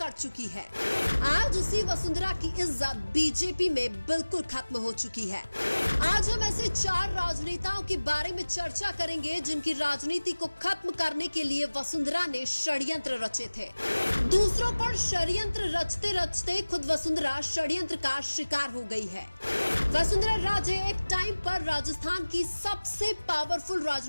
चुकी है, आज उसी वसुंधरा की इज्जत बीजेपी में बिल्कुल खत्म हो चुकी है। आज हम ऐसे 4 राजनेताओं के बारे में चर्चा करेंगे जिनकी राजनीति को खत्म करने के लिए वसुंधरा ने षड्यंत्र रचे थे। दूसरों पर षड्यंत्र रचते रचते खुद वसुंधरा षड्यंत्र का शिकार हो गई है। वसुंधरा राजे एक टाइम पर राजस्थान की सबसे पावरफुल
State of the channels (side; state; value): both; inverted; correlation -1.00